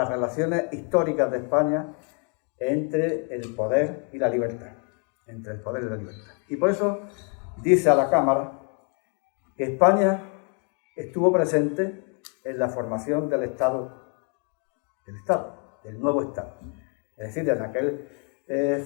relaciones históricas de España entre el poder y la libertad. Y por eso dice a la Cámara que España estuvo presente en la formación del nuevo Estado. Es decir, en aquel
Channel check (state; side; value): quieter; right; 38.7 dB